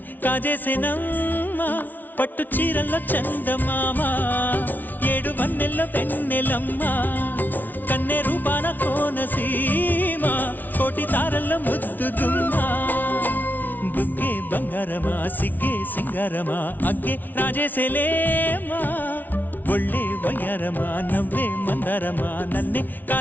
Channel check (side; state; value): right; late; 0.084 ms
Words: కాజేసేనమ్మా పట్టు చీరల్లో చందమామా ఏడు వన్నెల్ల వెన్నెలమ్మా కన్నె రూపాన కోనసీమా కోటి తారల్ల ముద్దుగుమ్మా బుగ్గే బంగారమా సిగ్గే సింగారమా అగ్గే రాజేసేలేమా ఒళ్ళే వయ్యారమా నవ్వే మందారమా నన్నే